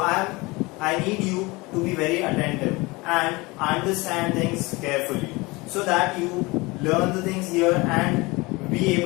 need you to be very attentive and understand things carefully so that you learn the things here and be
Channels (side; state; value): right; quieter; 23.8 dB